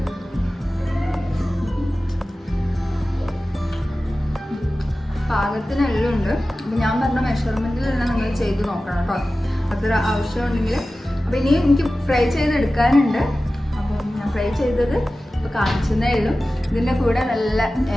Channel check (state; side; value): normal; both; correlation 0.95